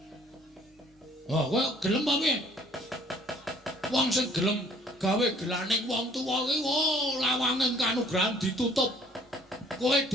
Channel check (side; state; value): both; normal; correlation 0.57